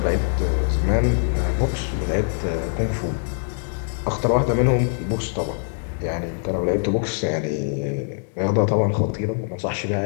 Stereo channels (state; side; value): silent; right; digital silence